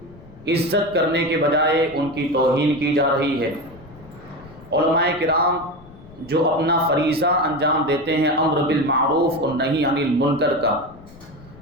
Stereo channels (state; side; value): noise; left; rumble, 21 dB below the sound